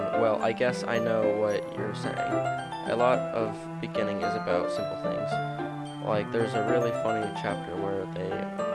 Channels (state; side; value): identical; both; correlation 1.00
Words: well, I guess I know what you're saying. A lot of beginning is about simple things. Like, there's a really funny chapter where